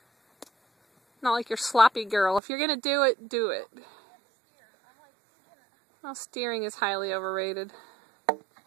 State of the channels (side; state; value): left; drops out; at 2.4 s